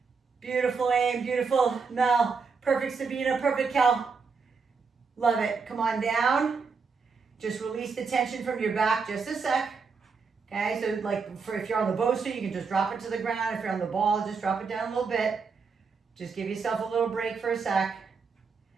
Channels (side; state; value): left; quieter; 5.1 dB